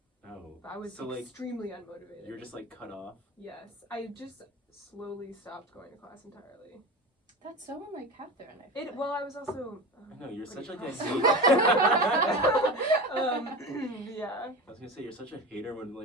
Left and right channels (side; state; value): both; normal; correlation 0.28